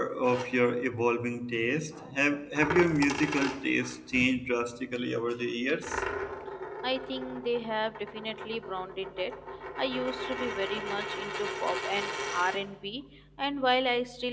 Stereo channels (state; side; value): identical; both; correlation 1.00